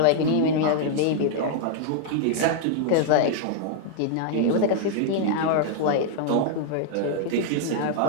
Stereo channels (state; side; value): different; both; correlation 0.00